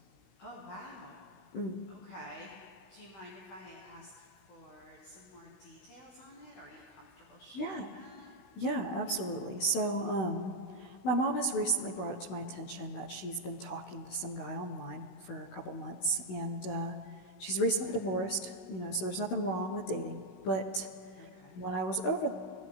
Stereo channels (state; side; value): late; right; 16 ms